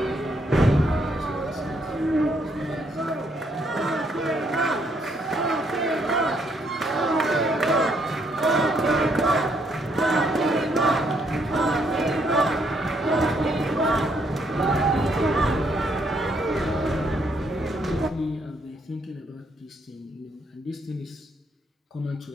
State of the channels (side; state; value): both; normal; correlation 0.71